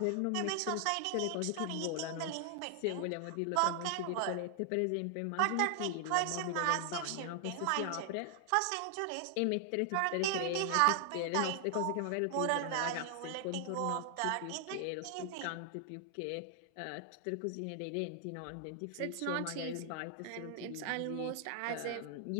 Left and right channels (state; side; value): different; both; correlation 0.00